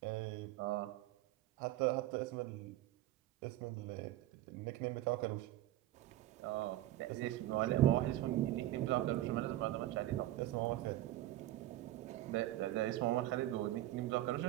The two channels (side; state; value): left; quieter; 14.9 dB